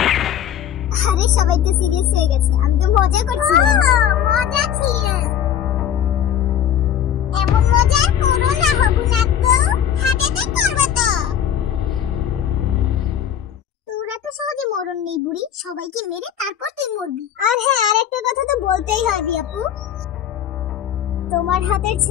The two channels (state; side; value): quieter; right; 9.7 dB